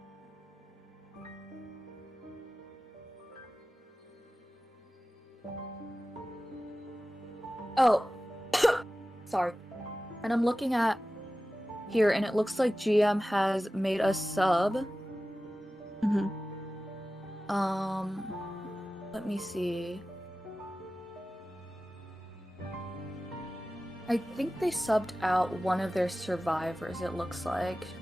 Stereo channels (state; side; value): normal; both; correlation 0.95